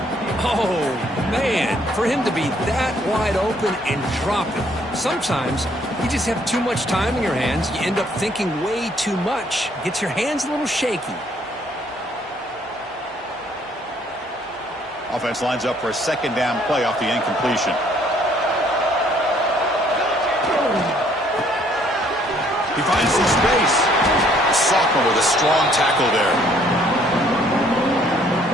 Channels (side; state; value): both; normal; correlation 0.64